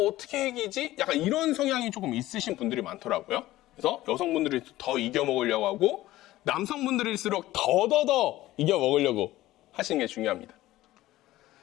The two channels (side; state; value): right; quieter; 16.2 dB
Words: 이기지? 약간 이런 성향이 조금 있으신 분들이 많더라고요. 그래서 여성분들이 더 이겨 먹으려고 하고 남성분들일수록 더더더 이겨 먹으려고 하시는 게 중요합니다.